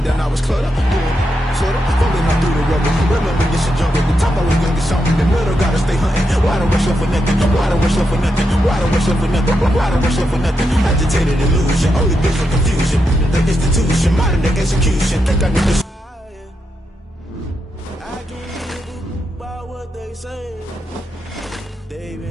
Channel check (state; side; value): normal; both; correlation 0.84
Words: down, I was cluttered, doing sorta, fumbling up through the rubber. Remember this a jungle, the top I was young, get something. The middle gotta stay hunting. Why don't rush up for nothing? Why don't rush up for nothing? Why don't rush up for nothing? Why don't rush up for nothing? Agitated illusion, only been for confusion. The institution, modern day execution. Think I need to. I can't give a about what they say. They've